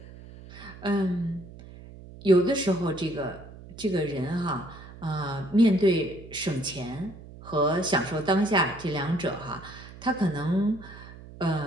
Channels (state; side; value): noise; right; hum, 17 dB below the sound